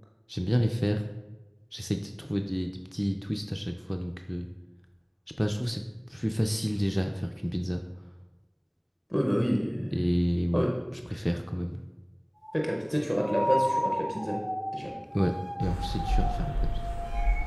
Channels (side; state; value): both; identical; correlation 1.00